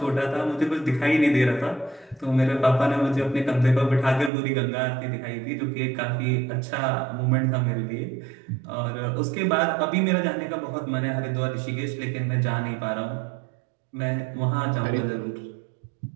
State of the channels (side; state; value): left; drops out; at 4.3 s